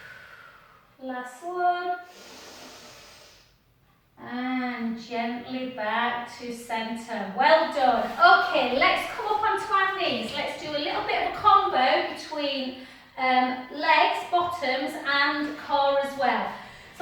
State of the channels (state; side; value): identical; both; correlation 1.00